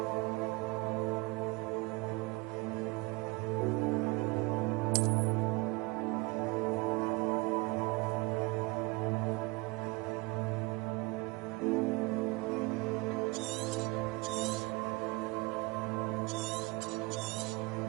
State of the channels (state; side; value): quieter; left; 25.2 dB